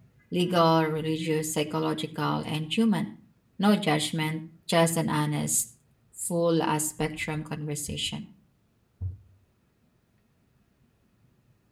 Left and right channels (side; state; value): both; identical; correlation 1.00